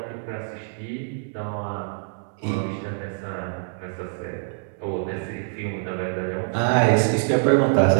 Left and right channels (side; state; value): left; silent; 56 dB below the other